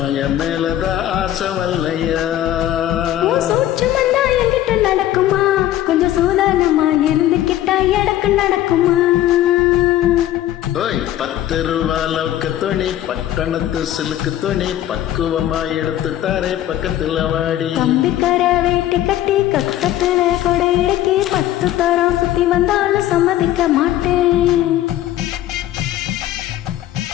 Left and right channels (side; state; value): right; quieter; 12.9 dB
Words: என் மேலதான் ஆசை வல்லையா. சூட்சமன்னா என்கிட்ட நடக்குமா, கொஞ்சம் சூதானமா இருந்துகிட்டா எடக்கு நடக்குமா. ஓய் 10 ரூபா லவுக்கு துணி, பட்டணத்து சிலுக்கு துணி, பக்குவமா எடுத்து தாரே பக்கத்துல வாடி. கம்பிக்கர வேட்டி கட்டி கக்கத்துல கொடை இடுக்கி 10 தரம் சுத்தி வந்தாலும் சம்மதிக்க மாட்டேன்.